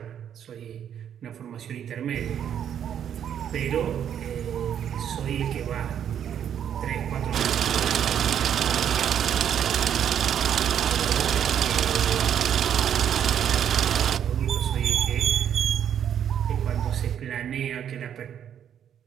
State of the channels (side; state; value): left; quieter; 9.2 dB